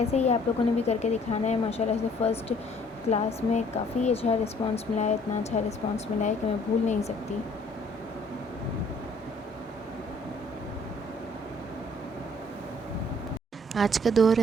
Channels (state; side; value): normal; both; correlation 0.59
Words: ही आप लोगों ने भी करके दिखाना है। माशाल्लाह से फ़र्स्ट क्लास में काफ़ी अच्छा रिस्पांस मिला है, इतना अच्छा रिस्पांस मिला है कि मैं भूल नहीं सकती। आज का दौर